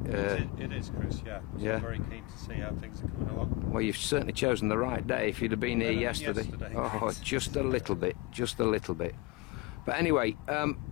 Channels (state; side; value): quieter; right; 20.5 dB